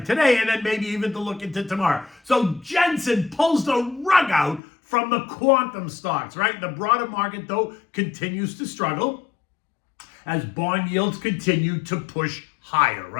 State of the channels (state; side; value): drops out; right; at 4.6 s